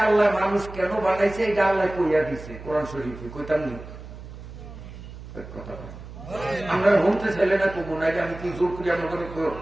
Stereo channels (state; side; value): noise; right; hum, 14 dB below the sound